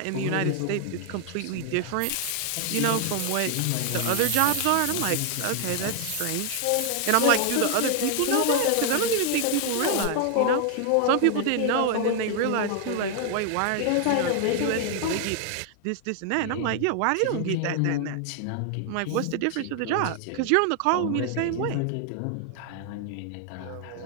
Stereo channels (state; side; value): different; both; correlation 0.00